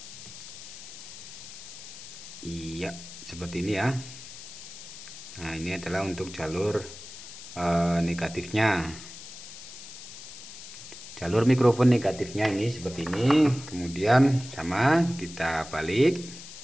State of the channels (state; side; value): noise; left; hiss, 15 dB below the sound